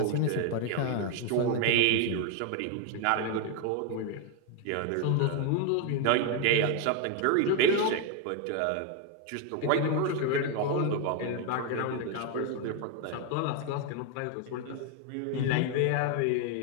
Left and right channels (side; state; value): both; different; correlation 0.01